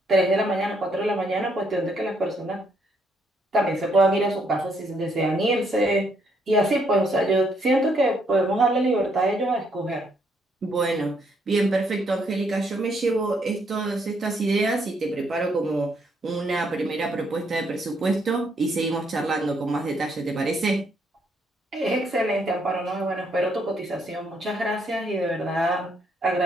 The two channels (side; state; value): both; normal; correlation 0.72